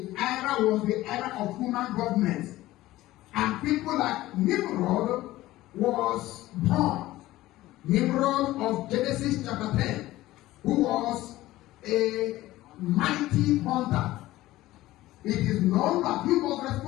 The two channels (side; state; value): right; quieter; 16.6 dB